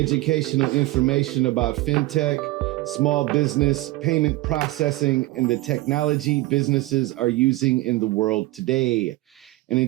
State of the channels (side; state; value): left; quieter; 19.1 dB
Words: information about fintech, small business, payment processing, and the technology businesses are using in the world today. And